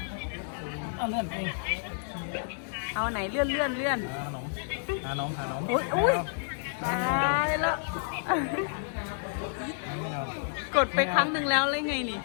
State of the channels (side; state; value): right; silent; digital silence